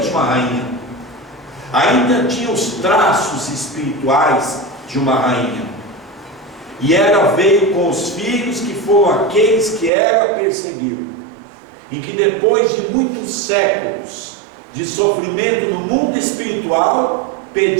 uma rainha. Ainda tinha os traços espirituais de uma rainha. E ela veio com os filhos que foram aqueles que ela perseguiu, e que depois de muitos séculos de sofrimento no mundo espiritual,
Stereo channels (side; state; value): left; drops out; at 9.9 s